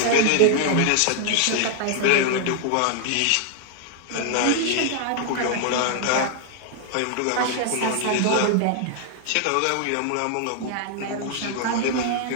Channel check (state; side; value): different; both; correlation 0.00